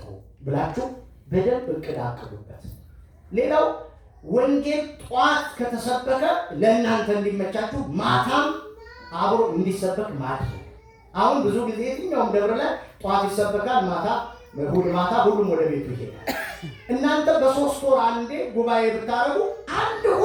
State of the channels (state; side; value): identical; both; correlation 1.00